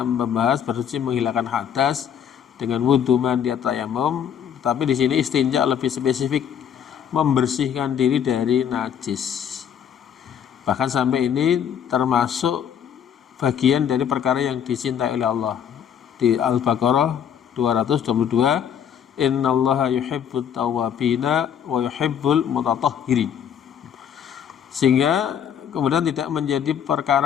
membahas bersuci menghilangkan hadas dengan wudu, mandi, tayamum, tapi di sini istinja lebih spesifik, membersihkan diri dari najis. Bahkan sampai ini termasuk bagian dari perkara yang dicintai oleh Allah. Di Al-Baqarah 222, innallaha yuhibbut tawwabina wa yuhibbul mutatahhirin. Sehingga kemudian tidak menjadi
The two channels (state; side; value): quieter; right; 8.6 dB